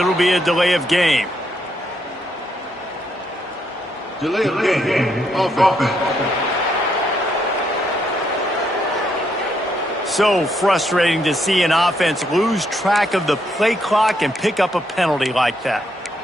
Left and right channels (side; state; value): both; normal; correlation 0.75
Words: be a delay of game. Delay of game. Offense. So frustrating to see an offense lose track of the play clock and pick up a penalty like that.